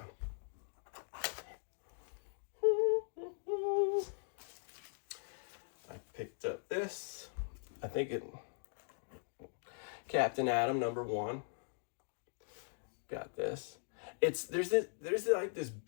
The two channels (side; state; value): right; silent; digital silence